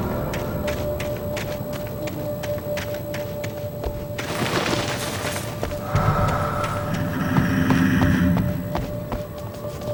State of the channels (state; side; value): identical; both; correlation 1.00